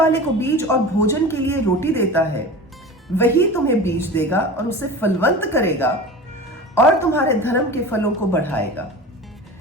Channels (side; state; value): both; normal; correlation 0.33